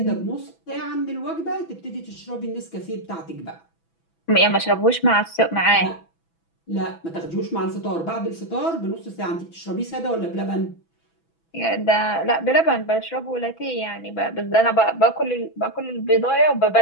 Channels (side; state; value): right; late; 6.0 ms